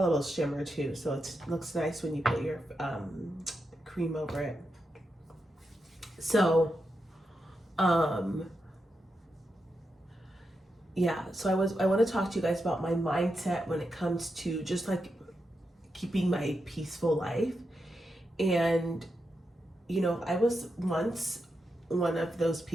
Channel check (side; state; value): both; normal; correlation 0.86